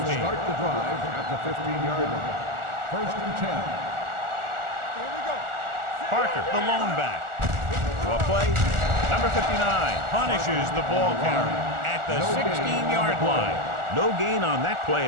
start the drive at the 15-yard line. First and 10. Here we go. Parker, the lone back. What play? Number 59 punishes the ball carrier at the 16-yard line. No gain on that play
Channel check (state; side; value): late; left; 1.4 ms